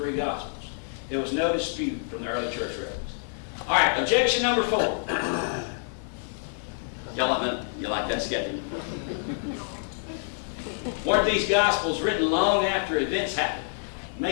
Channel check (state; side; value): silent; right; 59 dB below the other